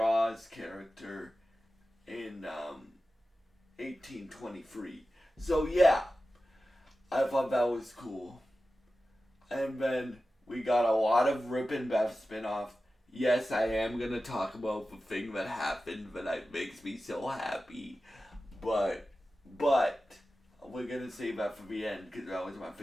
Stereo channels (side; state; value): both; normal; correlation 0.94